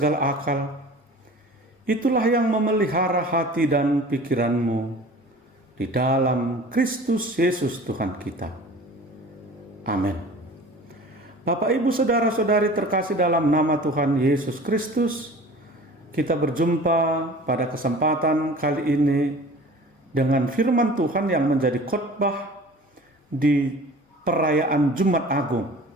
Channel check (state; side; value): normal; both; correlation 0.42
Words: akal, itulah yang memelihara hati dan pikiranmu di dalam Kristus Yesus Tuhan kita. Amin. Bapak, Ibu, saudara-saudari terkasih dalam nama Tuhan Yesus Kristus, kita berjumpa pada kesempatan kali ini dengan firman Tuhan yang menjadi khotbah di perayaan Jumat Agung